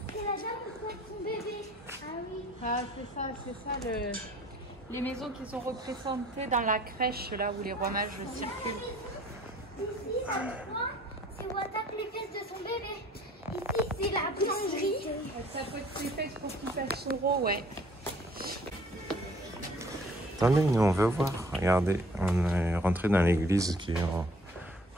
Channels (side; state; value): both; normal; correlation 0.54